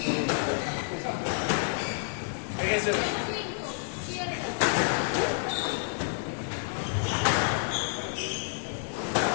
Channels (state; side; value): silent; right; 58 dB below the other